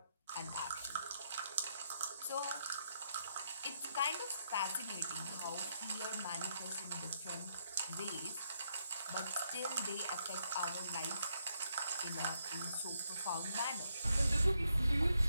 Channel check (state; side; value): inverted; both; correlation -0.76